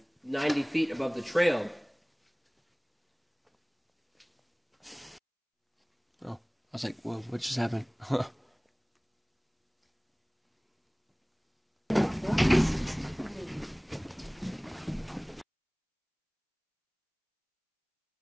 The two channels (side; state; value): both; identical; correlation 1.00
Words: 90 feet above the trail. Oh, I was like, whoa, what just happened?